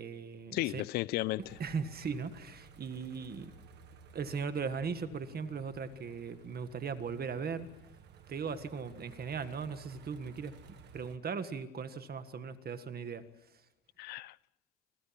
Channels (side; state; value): both; normal; correlation 0.38